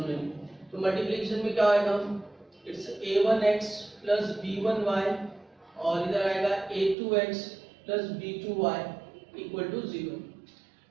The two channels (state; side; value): drops out; left; at 7.0 s